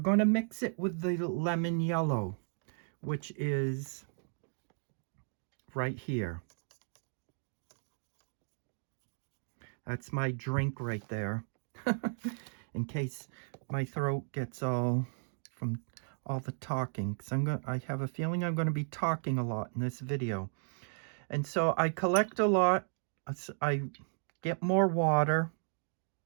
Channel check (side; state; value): left; silent; digital silence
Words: to mix it with the lemon yellow, which is right here. That's my drink right there. In case my throat gets all from all the talking, because I have a feeling I'm going to be talking a lot in this video. And so I collect a lot. I get more water.